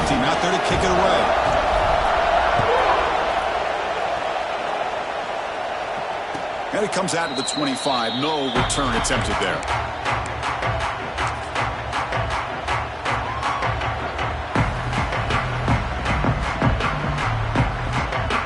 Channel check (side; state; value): both; identical; correlation 1.00